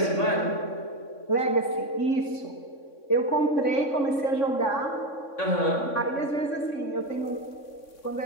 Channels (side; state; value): right; late; 3.6 ms